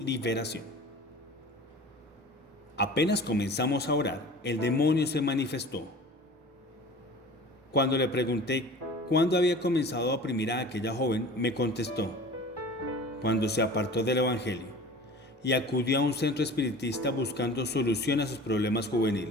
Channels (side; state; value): both; normal; correlation 0.40